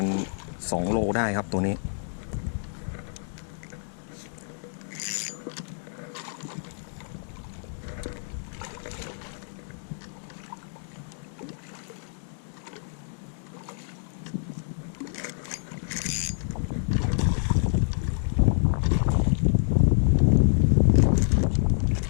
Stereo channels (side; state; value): right; silent; digital silence